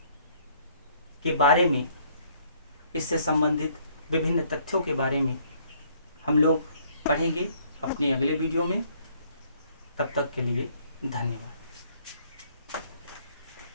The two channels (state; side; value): inverted; both; correlation -0.63